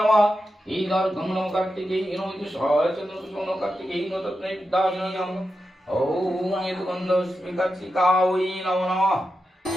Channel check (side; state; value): both; normal; correlation 0.89